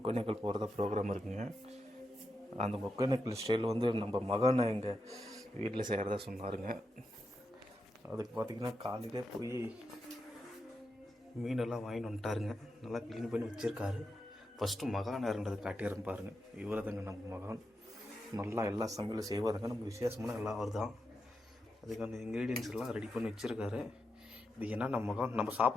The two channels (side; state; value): both; normal; correlation 0.86